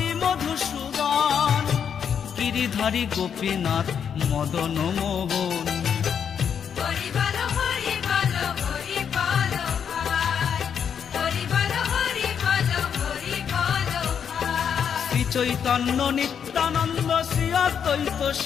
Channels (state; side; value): quieter; right; 7.7 dB